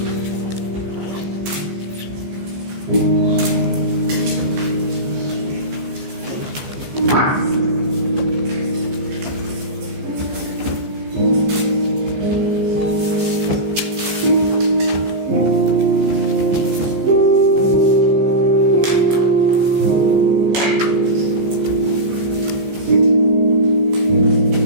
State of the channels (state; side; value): late; left; 15 ms